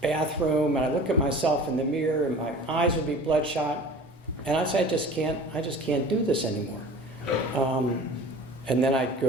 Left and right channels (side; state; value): both; normal; correlation 0.41